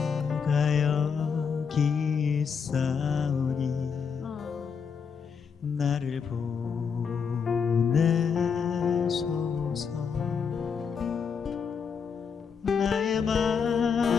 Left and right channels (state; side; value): quieter; right; 6.3 dB